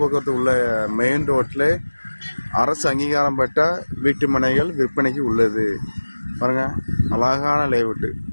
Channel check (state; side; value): inverted; both; correlation -1.00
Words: உள்ள மெயின் ரோட்டில் அரசு அங்கீகாரம் பெற்ற வீட்டு மனைகள் விற்பனைக்கு உள்ளது. பாருங்க, அழகான லேஅவுட்டு.